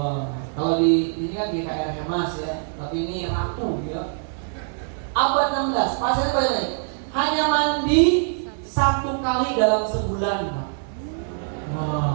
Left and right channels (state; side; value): silent; left; 61 dB below the other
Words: kalau di ini kan GKR Hemas ya, tapi ini ratu ya. Abad 16, pasirnya bagaimana? Hanya mandi 1 kali dalam sebulan, Pak.